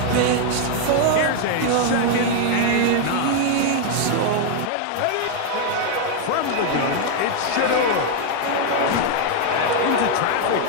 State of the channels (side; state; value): both; different; correlation 0.00